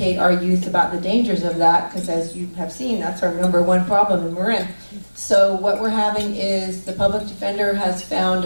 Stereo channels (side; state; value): both; inverted; correlation -1.00